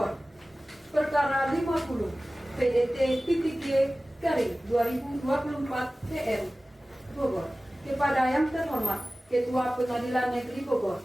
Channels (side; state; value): both; normal; correlation 0.97